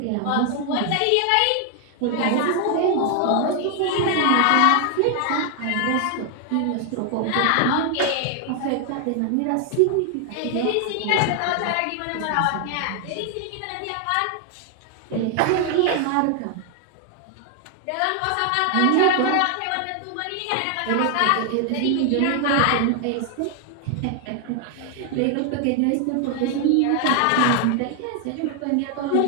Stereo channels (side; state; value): both; different; correlation 0.00